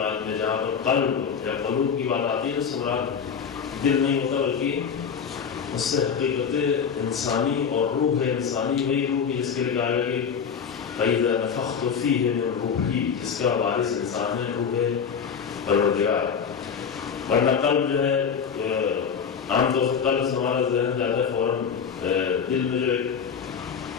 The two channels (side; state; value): right; quieter; 6.8 dB